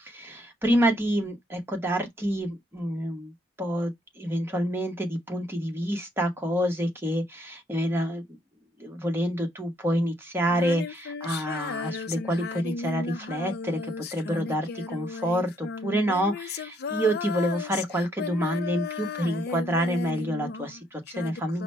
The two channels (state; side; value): normal; both; correlation 0.71